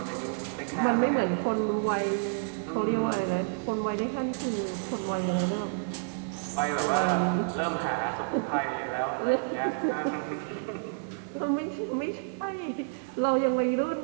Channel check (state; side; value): silent; left; 58 dB below the other